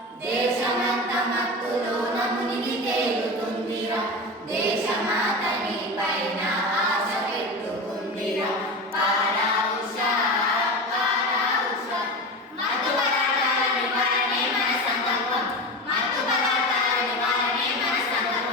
దేశమంతా మత్తులోన మునిగి తేలుతుందిరా, దేశమాతని పైన ఆశ పెట్టుకుందిరా. పారా ఉషా, మత్తు పదార్థాల నివారణే మన సంకల్పం, మత్తు పదార్థాల నివారణే మన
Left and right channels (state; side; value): normal; both; correlation 0.25